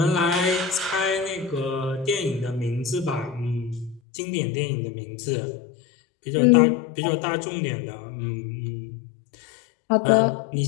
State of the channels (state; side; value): drops out; right; at 4.0 s